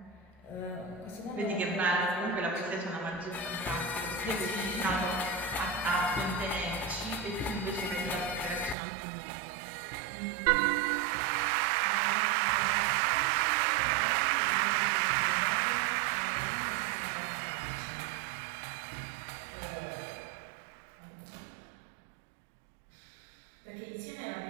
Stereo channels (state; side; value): drops out; left; at 8.8 s